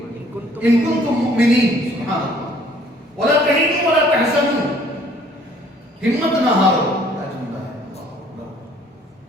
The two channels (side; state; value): both; normal; correlation 0.59